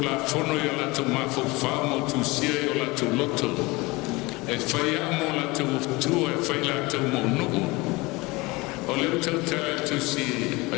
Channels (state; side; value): quieter; right; 23.4 dB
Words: la fono yo la tu ma fo famo tu sia yo la tu loto e fai amo la tu e fai la tu mo no o le tu si